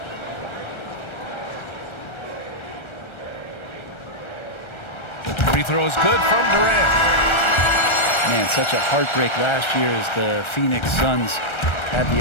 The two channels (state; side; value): late; right; 1.3 ms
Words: Free throw is good from Durant. Man, such a heartbreak last year as the Phoenix Suns had